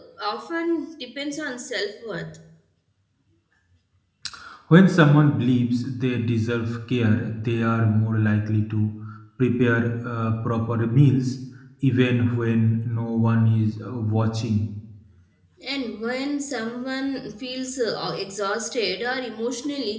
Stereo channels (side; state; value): both; identical; correlation 1.00